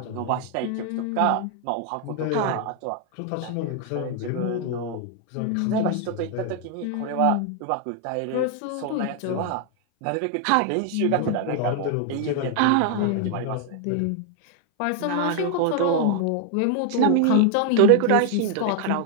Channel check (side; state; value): both; different; correlation 0.00